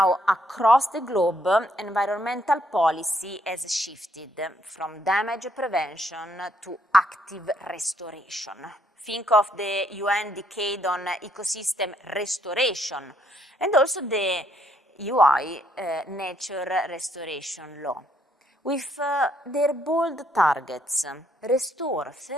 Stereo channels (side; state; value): both; normal; correlation 0.70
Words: across the globe, environmental policy has shifted from damage prevention to active restoration. Think of the UN Decade on Ecosystem Restoration and also the UI Nature Restoration Law. With their bold targets, restore